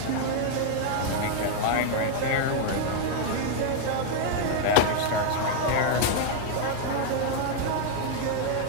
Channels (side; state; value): both; different; correlation 0.00